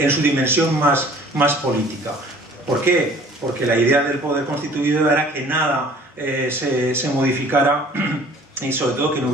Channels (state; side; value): normal; both; correlation 0.51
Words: su dimensión más política. ¿Por qué? Porque la idea del poder constituido era que nada se modificara, y sobre todo que no